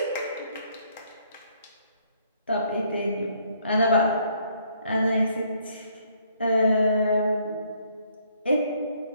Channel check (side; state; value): both; inverted; correlation -0.66